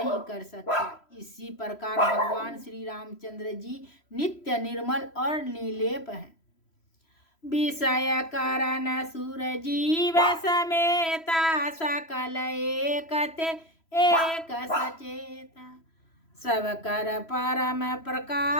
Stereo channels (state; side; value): late; right; 3.0 ms